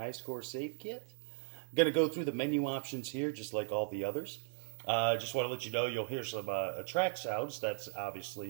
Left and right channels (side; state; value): left; silent; 53 dB below the other